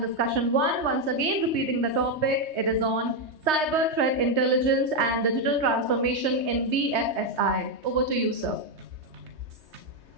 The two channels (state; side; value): late; left; 3.2 ms